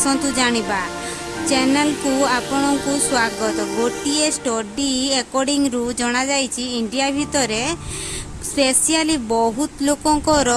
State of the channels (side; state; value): both; identical; correlation 1.00